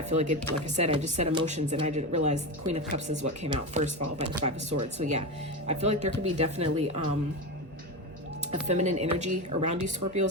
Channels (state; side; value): normal; both; correlation 0.19